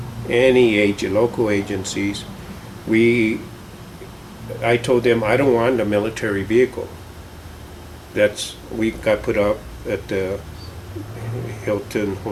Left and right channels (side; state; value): both; identical; correlation 1.00